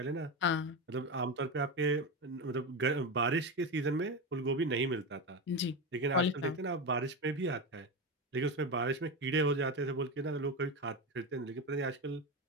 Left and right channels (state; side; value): normal; both; correlation 0.17